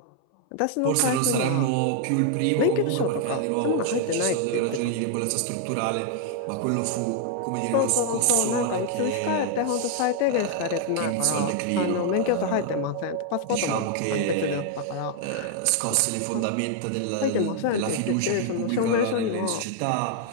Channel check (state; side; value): different; both; correlation 0.00